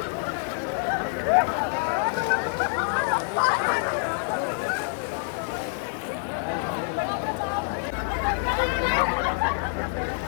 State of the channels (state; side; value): silent; right; 61 dB below the other